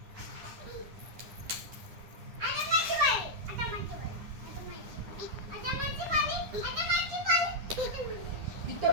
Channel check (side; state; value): left; late; 10 ms